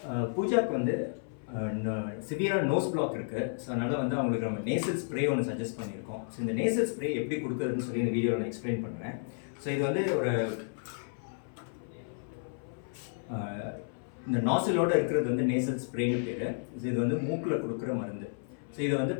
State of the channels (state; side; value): silent; right; 56 dB below the other